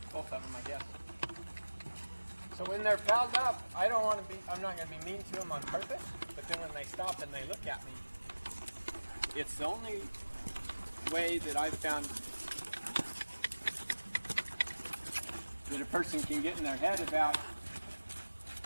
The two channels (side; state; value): both; inverted; correlation -1.00